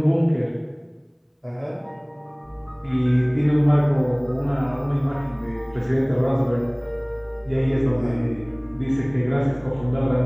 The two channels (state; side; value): identical; both; correlation 1.00